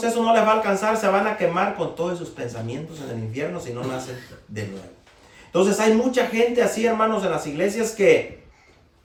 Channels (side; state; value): both; identical; correlation 1.00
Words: eso no les va a alcanzar. Se van a quemar con todos sus pensamientos en el infierno si no nacen de nuevo. Entonces hay mucha gente así, hermanos, en las iglesias que